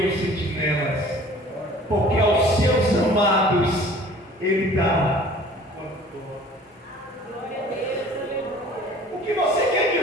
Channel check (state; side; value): normal; both; correlation 0.49